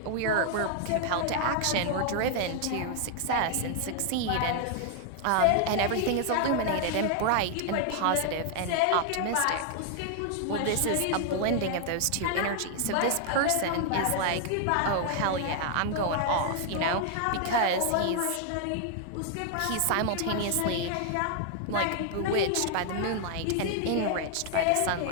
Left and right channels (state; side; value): different; both; correlation 0.00